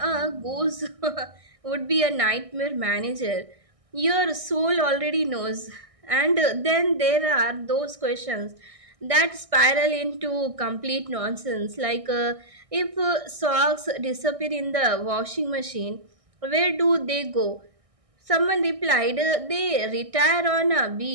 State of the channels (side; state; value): left; late; 1.6 ms